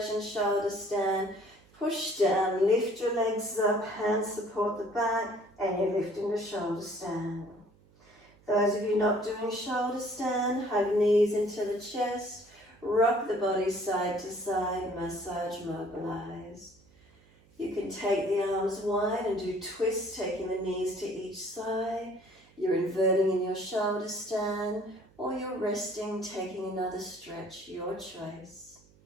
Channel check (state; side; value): noise; right; hum, 29 dB below the sound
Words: shoulder stand, push down, lift your legs up, hands support the back, and you're lifting the shoulder stand. Those of you not doing shoulder stand, hug knees into the chest, rock the body side to side, massage, mobilize. You can take the arms wide and do twists, taking the knees to each side. You're inverting in your shoulder stand, or you're resting, taking another stretch, your choice.